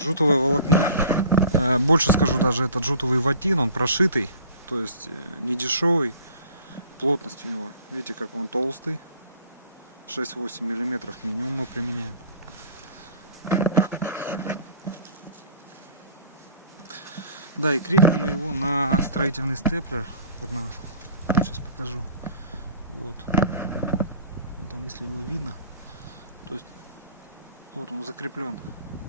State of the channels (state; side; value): inverted; both; correlation -0.46